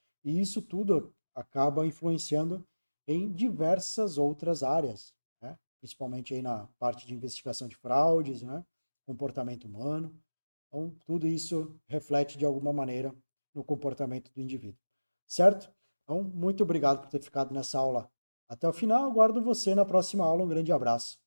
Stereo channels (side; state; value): both; inverted; correlation -1.00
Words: e isso tudo acaba influenciando em diversas outras áreas, né? Principalmente aí na parte de investigação de fraudes, né? Comportamento humano. Então, tudo isso reflete de alguma maneira no comportamento do indivíduo. Certo? Então, muito obrigado por ter ficado nessa aula até o final. Aguardo você na próxima aula. Um grande abraço